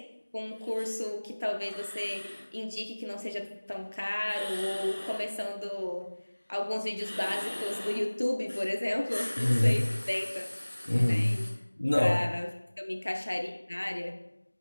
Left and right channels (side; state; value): both; inverted; correlation -1.00